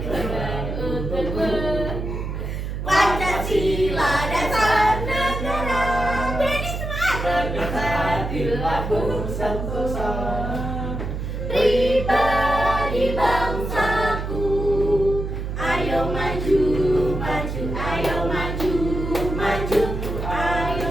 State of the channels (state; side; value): noise; right; hum, 4 dB below the sound